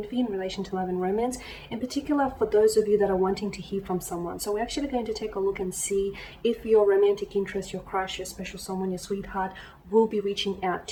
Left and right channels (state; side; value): identical; both; correlation 1.00